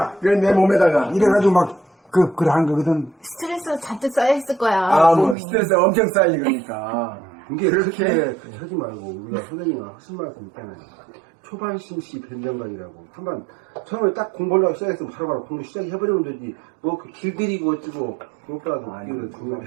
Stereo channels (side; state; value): left; drops out; at 5.4 s